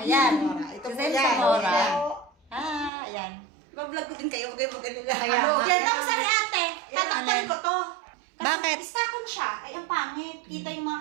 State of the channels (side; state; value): left; drops out; at 2.9 s